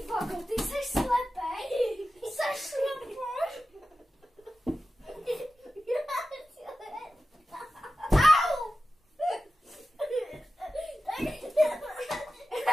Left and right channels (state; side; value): normal; both; correlation 0.94